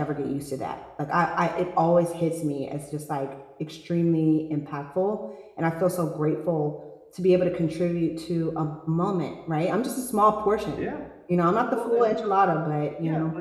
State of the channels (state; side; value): identical; both; correlation 1.00